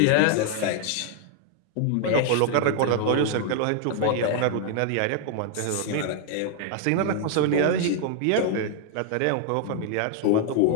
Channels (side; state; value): both; different; correlation 0.00